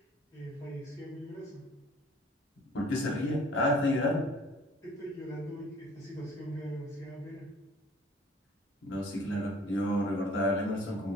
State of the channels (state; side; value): normal; both; correlation 0.53